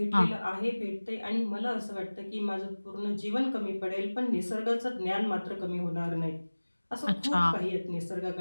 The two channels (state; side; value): inverted; both; correlation -1.00